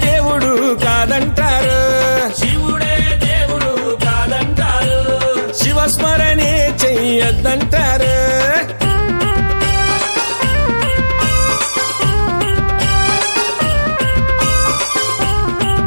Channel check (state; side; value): inverted; both; correlation -1.00